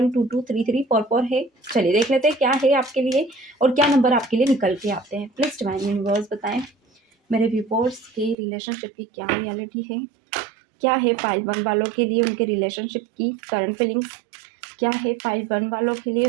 2 2 3 3 4 4 है। चलिए देख लेते हैं क्या है आपके लिए और क्या नंबर आपके लिए निकल के आते हैं। प्लीज डिवाइन यूनिवर्स बताएं मेरे व्यूअर्स के रिलेशनशिप की क्या रियलिटी है, क्या है फाइल 1 वालों के लिए उनके रिलेशनशिप की करंट फीलिंग्स, क्या है फाइल 1 वालों के लिए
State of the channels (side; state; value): left; drops out; at 8.3 s